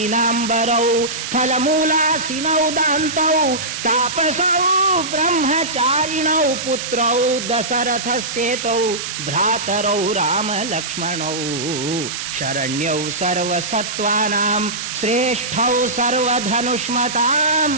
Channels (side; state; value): right; noise; hiss, 6 dB below the sound